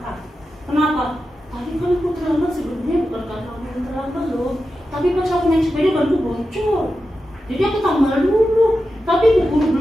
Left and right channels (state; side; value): normal; both; correlation 0.91